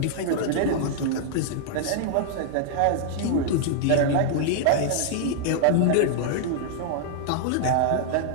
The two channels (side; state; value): both; different; correlation -0.01